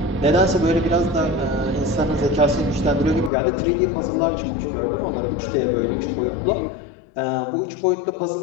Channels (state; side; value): drops out; right; at 3.3 s